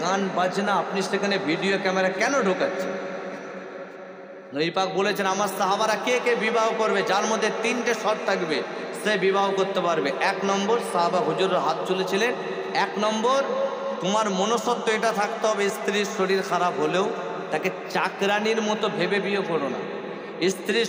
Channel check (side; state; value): both; identical; correlation 1.00